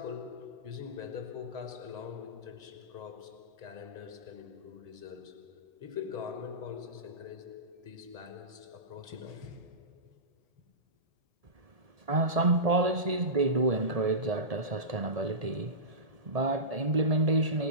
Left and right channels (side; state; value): left; late; 1.7 ms